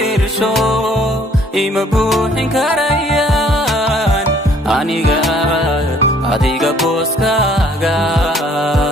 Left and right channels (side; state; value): both; normal; correlation 0.59